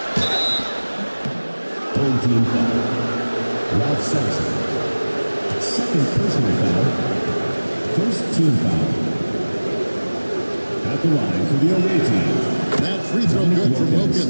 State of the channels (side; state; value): both; inverted; correlation -1.00